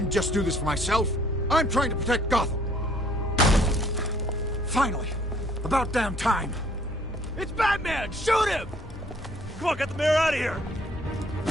just do this for myself. I'm trying to protect Gotham. Finally. About damn time. It's Batman! Shoot him! Come on, get the mayor out of here!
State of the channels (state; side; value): normal; both; correlation 0.61